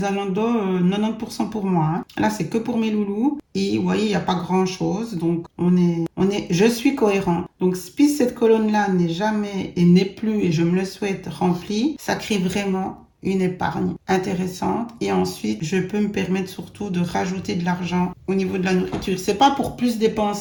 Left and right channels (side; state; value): both; identical; correlation 1.00